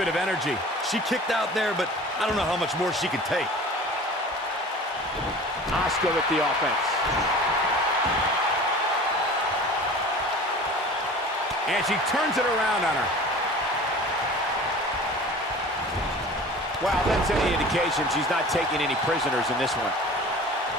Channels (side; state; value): both; normal; correlation 0.41